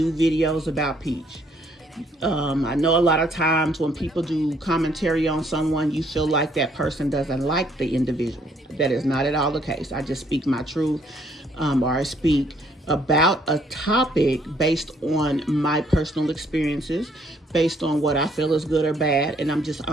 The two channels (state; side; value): normal; both; correlation 0.66